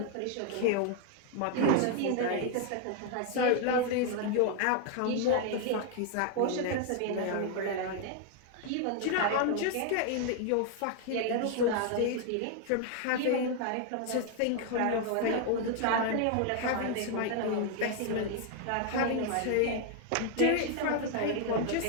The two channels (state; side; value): different; both; correlation 0.00